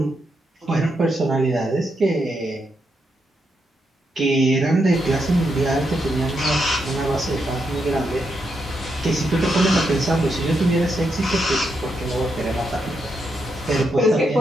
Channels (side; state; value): both; normal; correlation 0.81